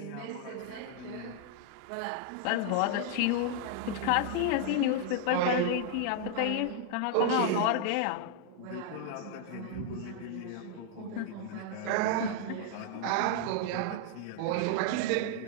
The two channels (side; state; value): both; different; correlation 0.00